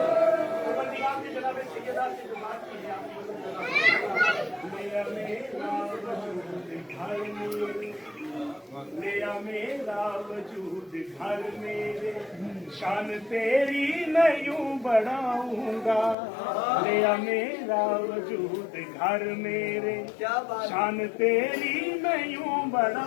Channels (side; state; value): right; drops out; at 16.2 s